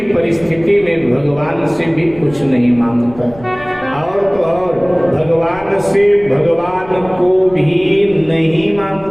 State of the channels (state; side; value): noise; left; rumble, 19 dB below the sound